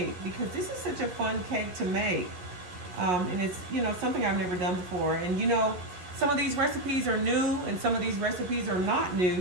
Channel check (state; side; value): late; left; 11 ms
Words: because this is such a fun cake to make. And it's, you know, something I've never done before. And you know, some of these recipes are new and some of these recipes are not